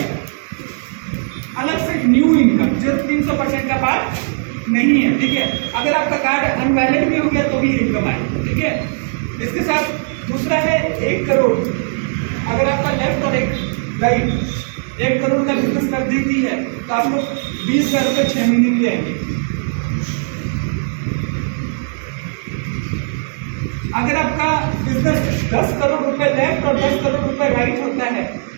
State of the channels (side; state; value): left; silent; digital silence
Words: अलग से न्यू इनकम जो 300% का पार्ट नहीं है, ठीक है। अगर आपका कार्ड अनवैलिड भी हो गया तो भी इनकम आएगी, ठीक है। इसके साथ दूसरा है 1 करोड़। अगर आपका लेफ्ट और एक राइट 1 करोड़ का बिजनेस कर देती है तो आप लोग 20,000 रुपये 6 महीने में आएंगे। अगर आपका बिजनेस 10 करोड़ रुपए लेफ्ट और 10 करोड़ रुपए राइट होता है